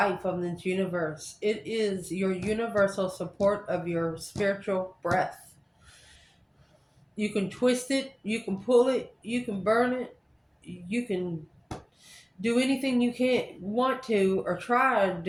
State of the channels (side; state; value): both; identical; correlation 1.00